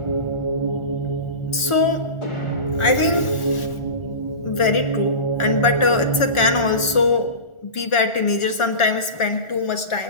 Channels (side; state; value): right; late; 1.4 ms